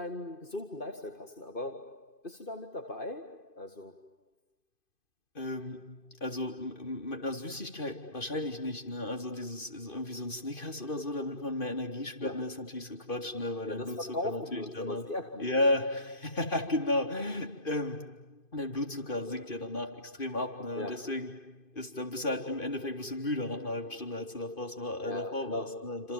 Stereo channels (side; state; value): right; late; 2.5 ms